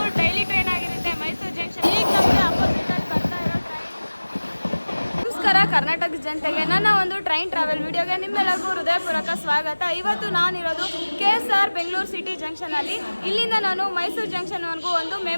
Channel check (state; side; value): inverted; both; correlation -1.00